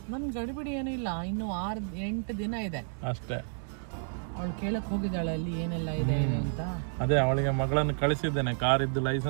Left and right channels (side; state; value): left; silent; digital silence